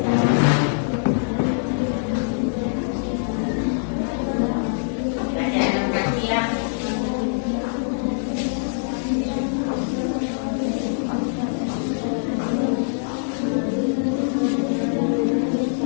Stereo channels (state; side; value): silent; right; 63 dB below the other